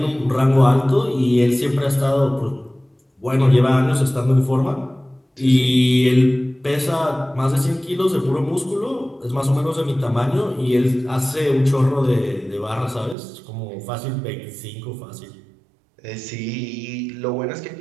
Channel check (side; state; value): left; drops out; at 13.2 s